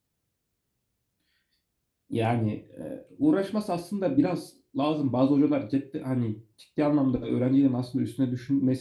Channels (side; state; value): both; identical; correlation 1.00